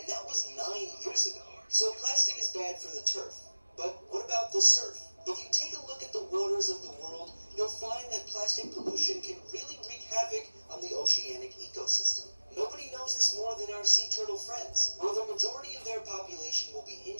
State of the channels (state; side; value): inverted; both; correlation -1.00